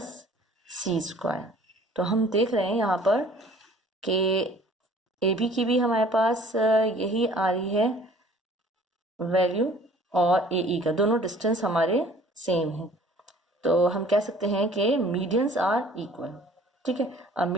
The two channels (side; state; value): both; normal; correlation 0.52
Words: c स्क्वायर। तो हम देख रहे हैं यहाँ पर कि ए बी की भी हमारे पास यही आ रही है वैल्यू, और ए ई का दोनों डिस्टेंस हमारे सेम है, तो हम कह सकते हैं कि मीडियंस आर इक्वल। ठीक है, अब